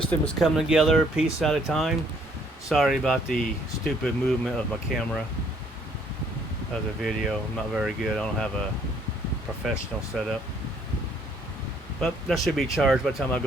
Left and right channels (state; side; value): normal; both; correlation 0.64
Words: is coming together a piece at a time. Sorry about the stupid movement of my camera of the video. I'm not very good. I don't have a professional setup. But that should be charged by the time I